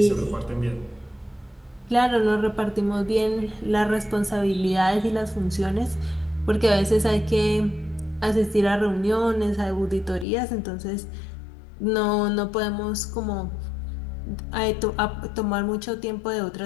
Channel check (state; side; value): drops out; right; at 10.2 s